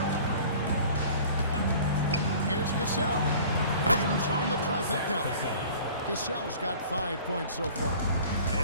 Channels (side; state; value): both; inverted; correlation -0.46